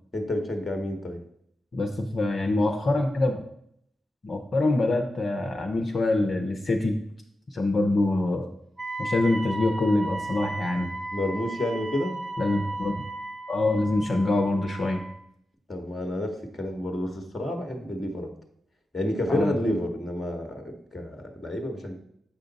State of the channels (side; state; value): both; normal; correlation 0.91